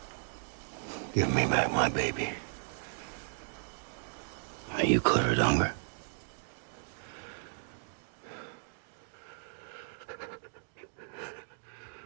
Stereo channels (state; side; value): silent; left; digital silence